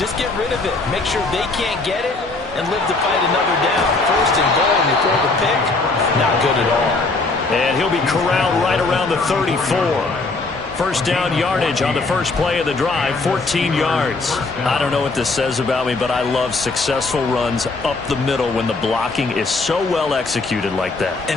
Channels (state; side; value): quieter; right; 3.6 dB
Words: get rid of it. Make sure they can't get it and live to fight another down. 1st and goal, and you throw the pick, not good at all. And he'll be corralled right around the 34. 1st down yardage on the first play of the drive, 14 yards. I don't know what this says about me, but I love successful runs up the middle when the blocking is so well executed like that. And